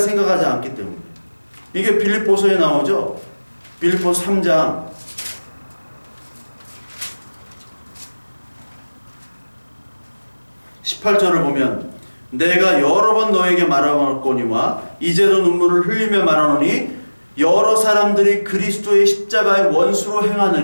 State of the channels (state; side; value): inverted; both; correlation -1.00